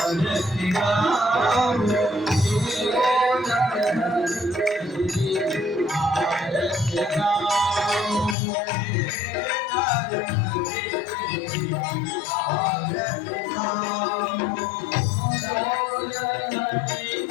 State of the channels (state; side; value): drops out; right; at 8.3 s